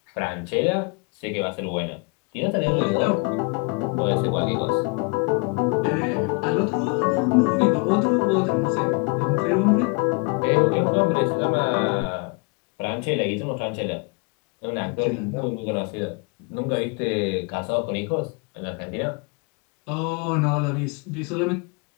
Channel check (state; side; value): quieter; right; 31.6 dB